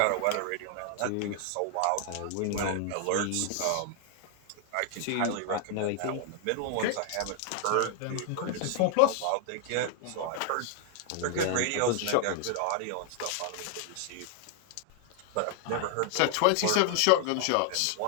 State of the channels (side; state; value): both; different; correlation 0.00